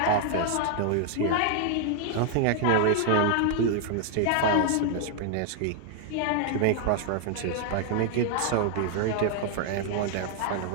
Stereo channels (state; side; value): different; both; correlation 0.00